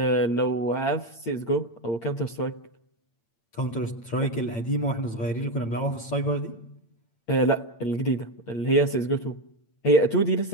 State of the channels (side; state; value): right; late; 8.8 ms